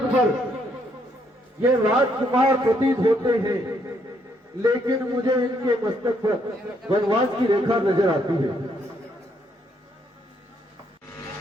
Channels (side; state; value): both; normal; correlation 0.72